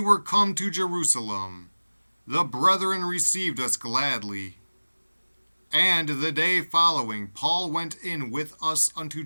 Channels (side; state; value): both; inverted; correlation -1.00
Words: come to Jerusalem, the brethren received us gladly. And the day following, Paul went in with us unto